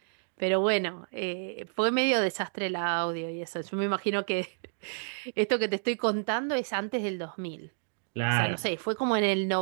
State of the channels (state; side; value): silent; left; digital silence